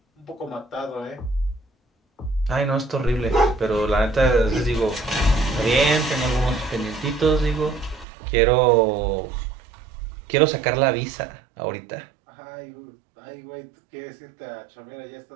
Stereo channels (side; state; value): left; drops out; at 8.1 s